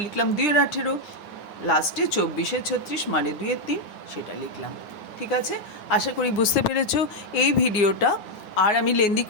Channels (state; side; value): late; right; 9.4 ms